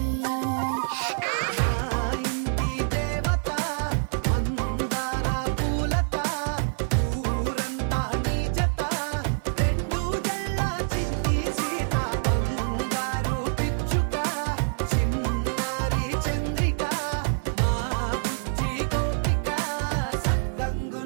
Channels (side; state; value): left; silent; digital silence